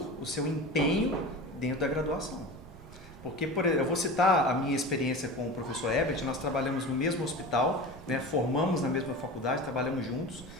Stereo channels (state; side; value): noise; right; rumble, 19 dB below the sound